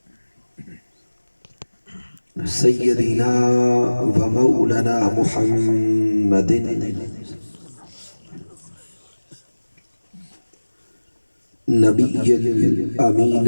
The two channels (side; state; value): both; inverted; correlation -1.00